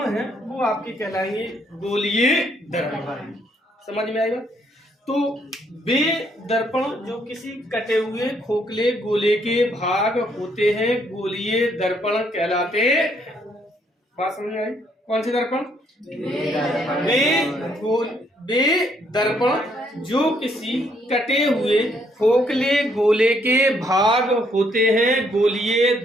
हैं वो आपके कहलाएंगे गोलीय दर्पण। समझ में आई बात? तो वे दर्पण जो किसी कटे हुए खोखले गोले के भाग होते हैं गोलीय दर्पण कहलाते। बात समझ में आई? कौन से दर्पण? वे दर्पण जो किसी कटे हुए खोखले गोले के भाग होते हैं गोलीय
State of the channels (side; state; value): both; normal; correlation 0.70